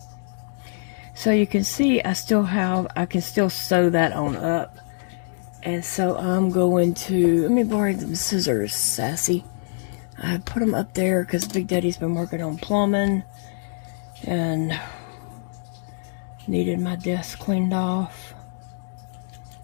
So you can see I can still sew that on up. And so I'm going to, let me borrow them scissors, Sassy. I put them up there because Big Daddy's been working on plumbing and needed my desk cleaned off.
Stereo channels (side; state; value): right; silent; digital silence